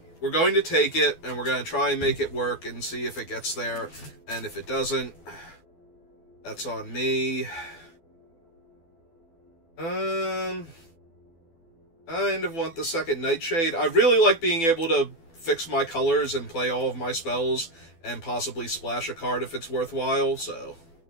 we're going to take it, and we're going to try and make it work and see if it gets there. And if it doesn't, that's on me. I kind of want the second Nightshade. I really like being able to fix my colors and play all of my spells and possibly splash a card if it's worthwhile, so...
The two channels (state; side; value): late; right; 12 ms